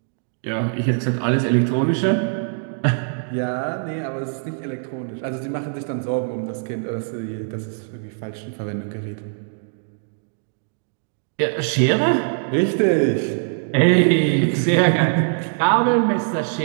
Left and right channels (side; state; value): left; silent; 64 dB below the other